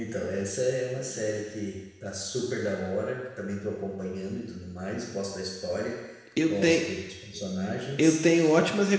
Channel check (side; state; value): both; identical; correlation 1.00